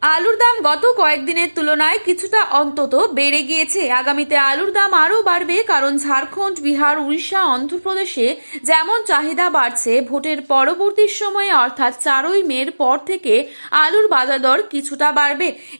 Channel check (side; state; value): both; inverted; correlation -1.00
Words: আলুর দাম গত কয়েকদিনের তুলনায় কিছুটা অন্তত বেড়ে গিয়েছে। আগামীতে আলুর দাম আরও বাড়বে, কারণ ঝাড়খণ্ড, বিহার, উড়িষ্যা, অন্ধ্রপ্রদেশে যেমন চাহিদা বাড়ছে, ভোটের পরবর্তী সময়ে অর্থাৎ 4ই মের পর থেকে আলুর বাজার দর কিছুটা বাড়বে।